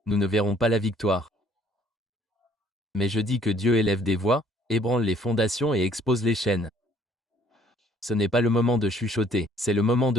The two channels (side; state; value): both; normal; correlation 0.60